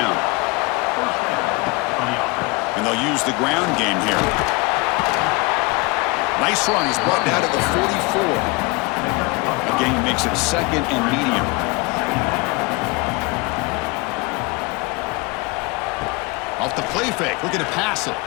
And they'll use the ground game here. Nice run. He's brought down to the 44. The game makes it 2nd and medium. Off the play fake. Looking to pass it.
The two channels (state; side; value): quieter; right; 26.3 dB